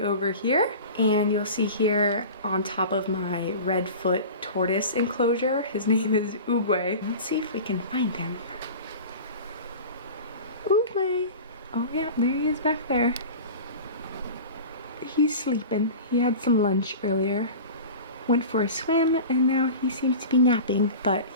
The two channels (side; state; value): both; inverted; correlation -0.34